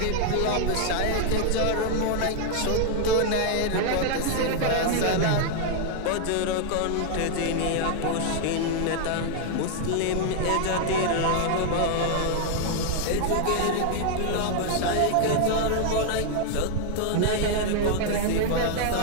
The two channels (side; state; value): both; different; correlation 0.00